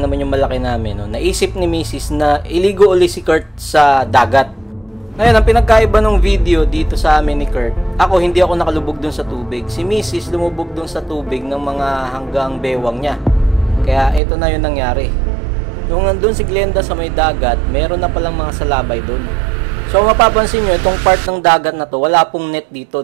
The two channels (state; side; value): drops out; left; at 14.2 s